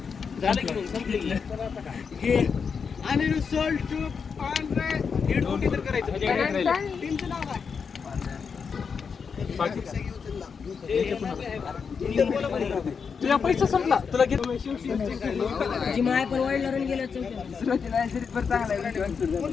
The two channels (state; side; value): quieter; right; 6.0 dB